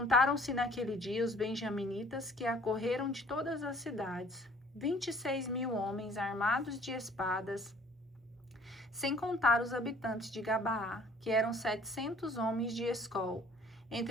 naquele dia os benjaminitas que acorreram de todas as cidades, 26.000 homens armados de espadas, sem contar os habitantes de Gabaá, que eram 700 homens de Escol.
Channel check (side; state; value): both; normal; correlation 0.54